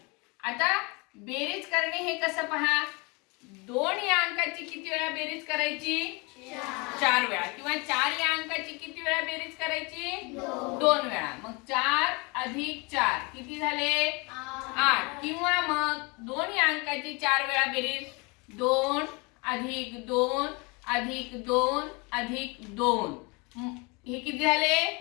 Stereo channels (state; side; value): quieter; right; 28.5 dB